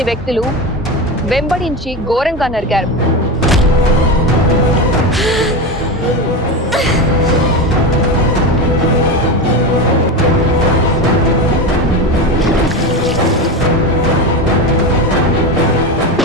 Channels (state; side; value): normal; both; correlation 0.19